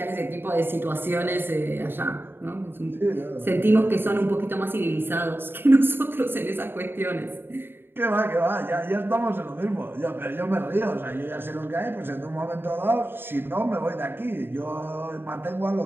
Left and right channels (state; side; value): late; left; 0.10 ms